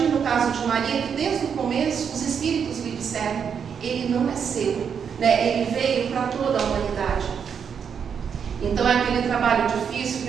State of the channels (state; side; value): quieter; left; 7.1 dB